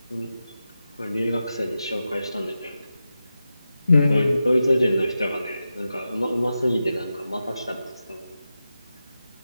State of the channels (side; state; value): both; inverted; correlation -0.91